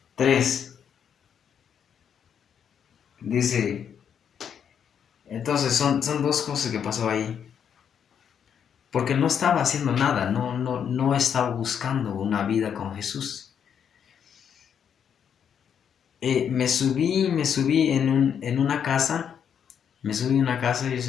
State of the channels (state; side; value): quieter; right; 8.0 dB